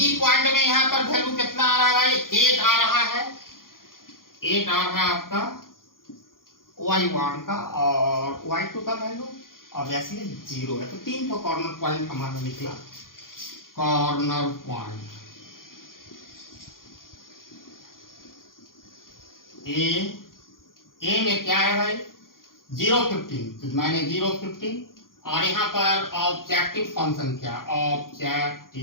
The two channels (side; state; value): right; late; 0.91 ms